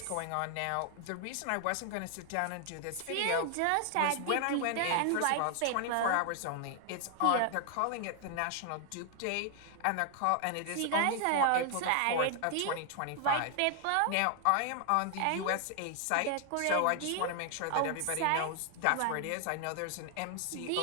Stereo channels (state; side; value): different; both; correlation 0.00